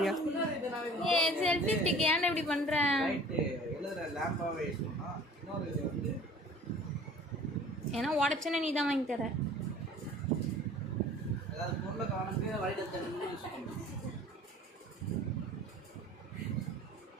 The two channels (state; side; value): normal; both; correlation 0.47